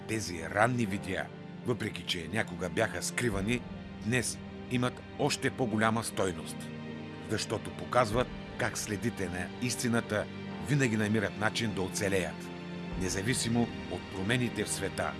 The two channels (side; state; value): both; identical; correlation 1.00